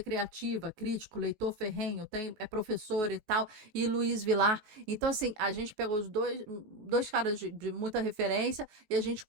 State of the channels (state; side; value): late; left; 19 ms